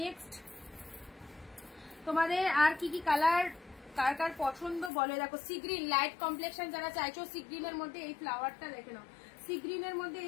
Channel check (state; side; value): drops out; right; at 4.9 s